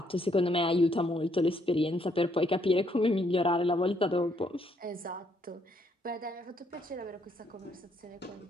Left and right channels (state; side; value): normal; both; correlation 0.71